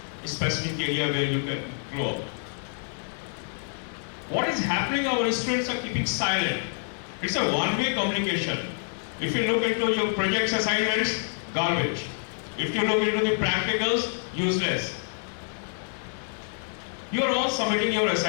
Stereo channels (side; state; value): right; silent; 60 dB below the other